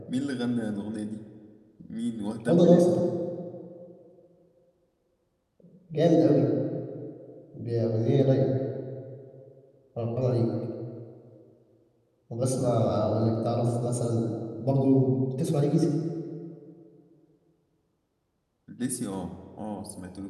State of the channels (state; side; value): identical; both; correlation 1.00